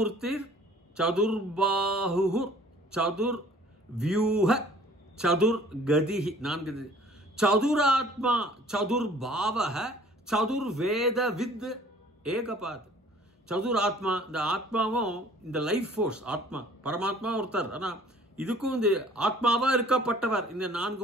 சதுர்பாஹு சதுர்வியூஹ சதுர்கதிஹி 4. சதுராத்மா சதுர்பாவஹ சதுர்வேதவித் ஏகபாத். சதுராத்மா இந்த ஆத்மாவும் இந்த லைஃப் ஃபோர்ஸ் ஆத்மா பரமாத்மா ஒருத்தர். ஆனால் இதுக்கும் இந்த ஆத்மாவா இருக்கப்பட்டவர் இந்த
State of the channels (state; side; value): normal; both; correlation 0.53